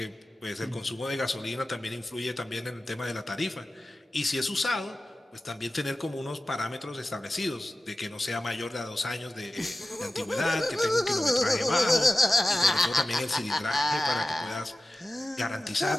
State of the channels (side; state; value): both; normal; correlation 0.95